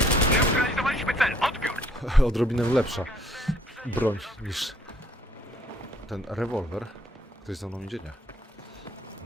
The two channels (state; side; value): normal; both; correlation 0.63